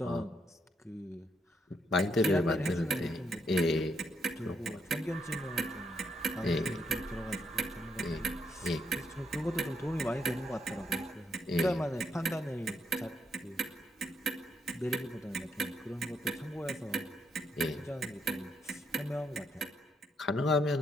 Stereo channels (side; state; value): both; normal; correlation 0.76